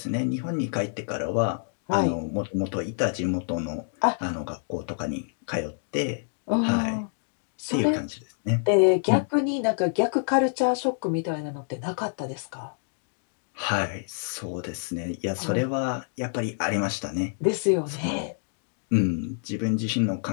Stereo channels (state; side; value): silent; right; digital silence